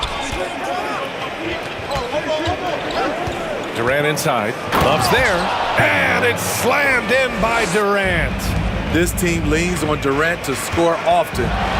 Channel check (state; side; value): identical; both; correlation 1.00